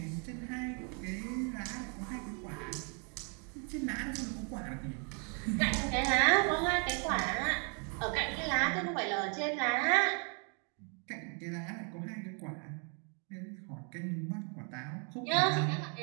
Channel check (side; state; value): left; quieter; 38.3 dB